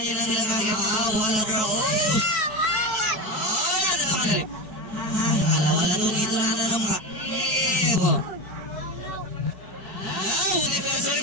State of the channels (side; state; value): right; late; 4.6 ms